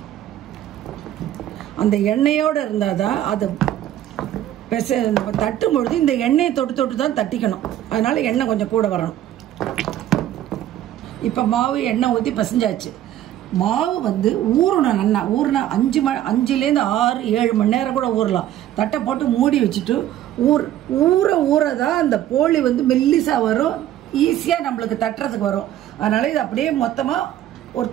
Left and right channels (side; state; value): left; quieter; 12.4 dB